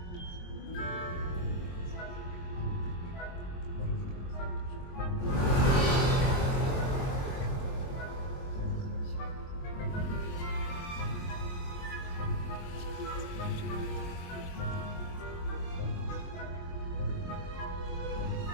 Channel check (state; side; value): late; right; 22 ms